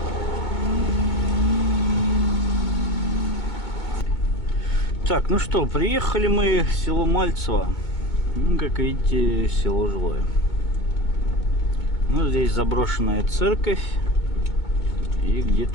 Так, ну что, приехали мы в село Мальцево. Ну, как видите, село жилое. Ну, здесь заброшенная церковь. И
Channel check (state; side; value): late; right; 2.2 ms